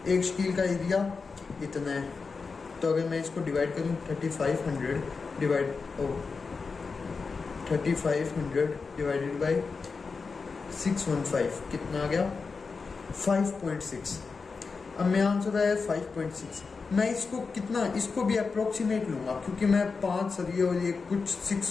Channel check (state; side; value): quieter; right; 4.7 dB